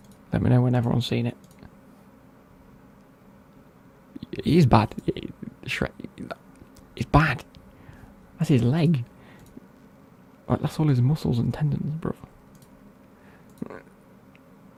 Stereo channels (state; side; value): identical; both; correlation 1.00